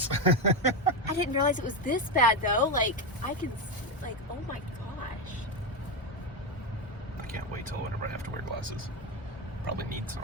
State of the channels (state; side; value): normal; both; correlation 0.12